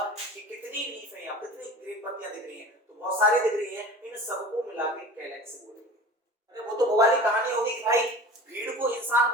कि कितनी लीफ है, यहाँ कितनी ग्रीन पत्तियां दिख रही हैं, तो बहुत सारी दिख रही हैं, इन सबको मिला के कैलेक्स बोलेंगे। अरे वो तो वो वाली कहानी होगी कि भाई भीड़ को इंसान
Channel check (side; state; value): both; normal; correlation 0.39